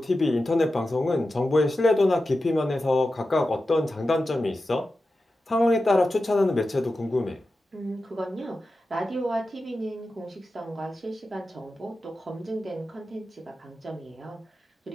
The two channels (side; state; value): both; normal; correlation 0.92